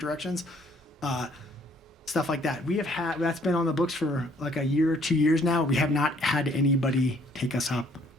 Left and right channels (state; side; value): normal; both; correlation 0.62